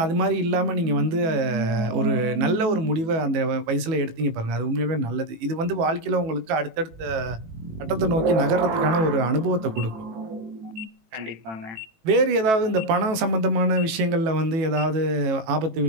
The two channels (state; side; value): late; left; 18 ms